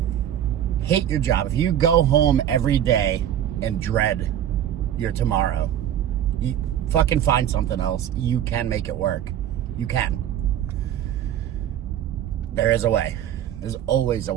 hate your job, if you go home every day and dread your tomorrow, you fucking find something else. You can make it work. You can. There is a way. There's always a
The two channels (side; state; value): left; quieter; 10.6 dB